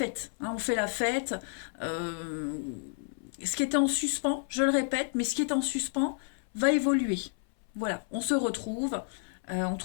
On fait la fête. Euh, Ce qui était en suspens, je le répète, mais ce qui est en suspens va évoluer. Voilà, on se retrouve, on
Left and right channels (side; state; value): right; silent; 57 dB below the other